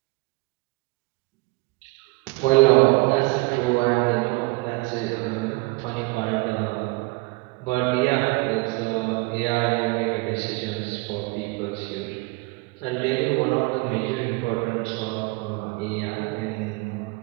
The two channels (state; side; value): quieter; left; 25.4 dB